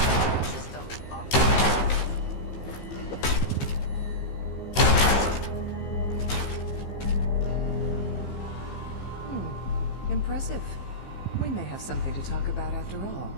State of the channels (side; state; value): right; late; 15 ms